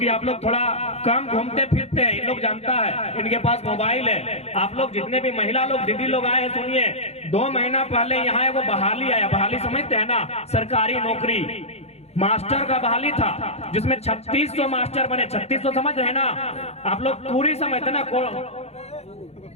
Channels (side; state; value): right; late; 0.31 ms